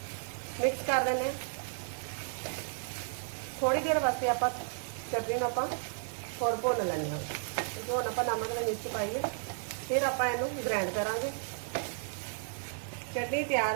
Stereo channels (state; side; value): silent; left; digital silence